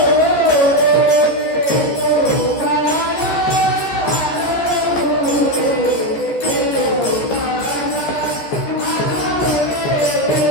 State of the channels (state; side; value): late; right; 14 ms